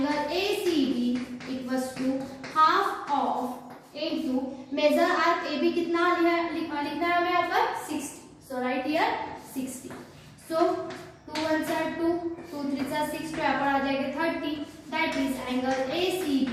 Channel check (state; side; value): identical; both; correlation 1.00